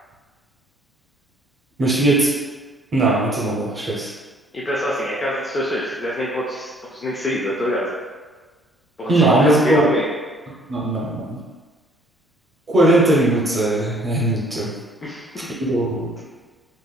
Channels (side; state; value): both; normal; correlation 0.59